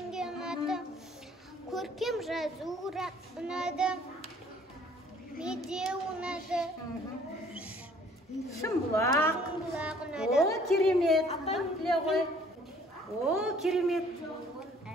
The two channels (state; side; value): normal; both; correlation 0.57